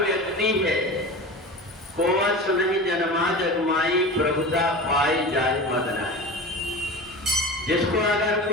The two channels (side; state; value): both; normal; correlation 0.31